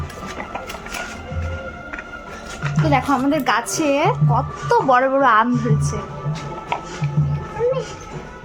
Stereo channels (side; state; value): both; identical; correlation 1.00